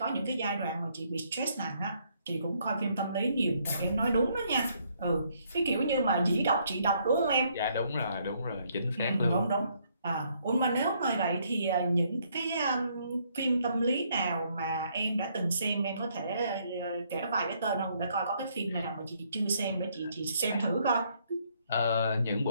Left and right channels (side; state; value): both; inverted; correlation -0.69